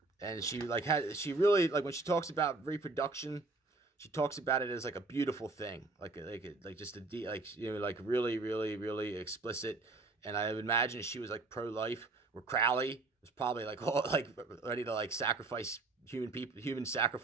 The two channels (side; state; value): left; quieter; 3.5 dB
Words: And she really when she talks about reproduction, she talks about it as like a beautiful thing, like just really, really, really explicit. And I would imagine she was like pro-life, where Crowley was probably like ready to like sacrifice human